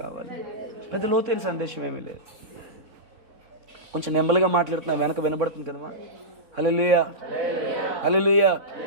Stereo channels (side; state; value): left; late; 3.5 ms